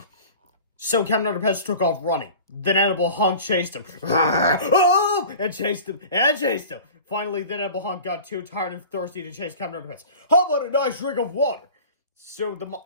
So Captain Underpants took off running. The Inedible Hunk chased him. And chased him. Finally, the Inedible Hunk got too tired and thirsty to chase Captain Underpants. How about a nice drink of water? So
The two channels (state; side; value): inverted; both; correlation -0.39